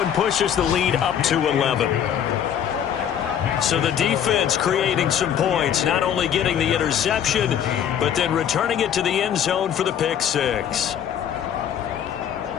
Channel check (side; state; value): right; quieter; 9.2 dB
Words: pushes the lead up to 11. So the defense creating some points, not only getting the interception, but then returning it to the end zone for the pick six.